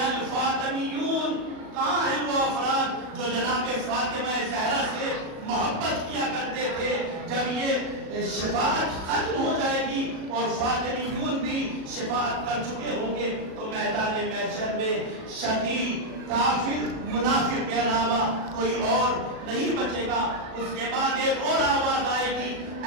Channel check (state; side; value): late; left; 37 ms